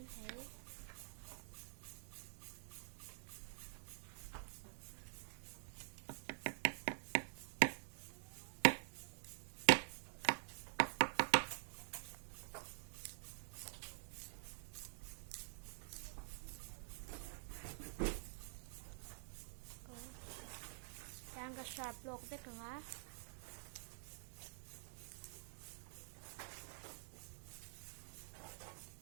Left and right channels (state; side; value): silent; left; digital silence